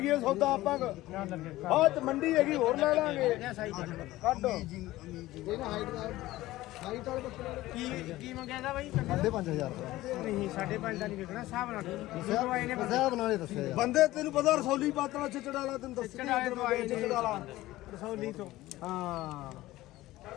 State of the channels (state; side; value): quieter; right; 16.9 dB